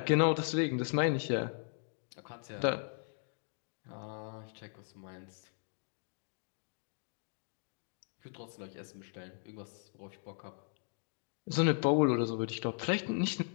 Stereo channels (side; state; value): right; silent; 53 dB below the other